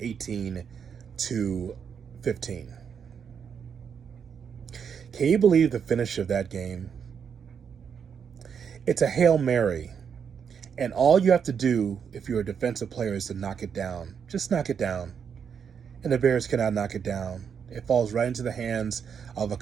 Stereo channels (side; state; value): left; quieter; 7.1 dB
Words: Can you believe the finish of that game? It's a Hail Mary. And all you have to do if you're a defensive player is to knock it down. Just knock it down. And the Bears cannot knock it down. It falls right into the hands of a